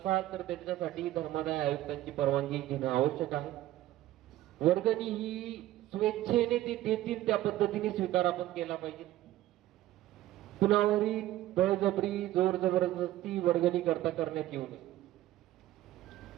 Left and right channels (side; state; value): left; quieter; 14.8 dB